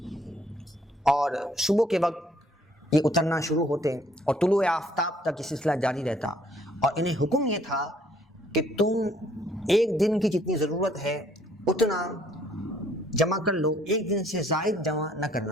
اور صبح کے وقت یہ اترنا شروع ہوتے اور طلوع آفتاب تک یہ سلسلہ جاری رہتا، اور انہیں حکم یہ تھا کہ تم ایک دن کی جتنی ضرورت ہے اتنا جمع کر لو، ایک دن سے زائد جمع نہ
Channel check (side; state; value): both; normal; correlation 0.63